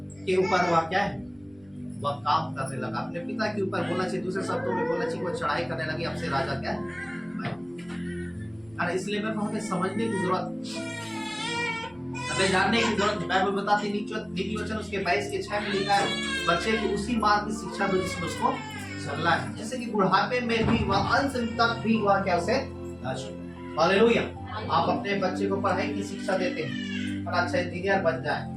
के ऊपर वह क्या है वह काम करने लगा, अपने पिता के ऊपर बोलना चाहिए, दूसरे शब्दों में बोलना चाहिए वो चढ़ाई करने लगी, अब से राजा क्या है मैं। इसलिए मैं हमें समझने की जरूरत, हमें जानने की जरूरत है। बाइबल बताती नीति वचन उसके 22 के 6 में लिखा है, बच्चे को उसी मार्ग की शिक्षा दो जिसमें उसको चलना है, जैसे कि बुढ़ापे में भी वह अंत तक भी वह क्या उसे हालेलुया। आप अपने बच्चे को पढ़ाई की शिक्षा देते हैं और अच्छा इंजीनियर बन जाए,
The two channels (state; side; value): noise; right; rumble, 28 dB below the sound